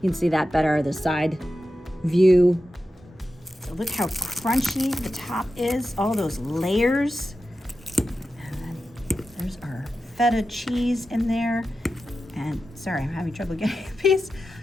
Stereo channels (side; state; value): both; normal; correlation 0.91